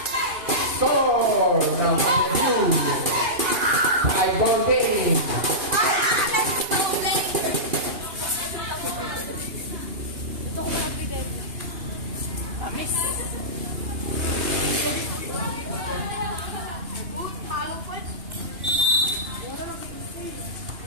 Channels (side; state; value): left; late; 2.9 ms